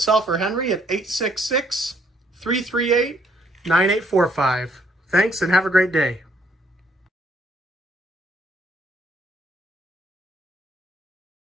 or Henry at 866-338-9845. Thanks and have a great day.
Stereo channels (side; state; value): both; normal; correlation 0.67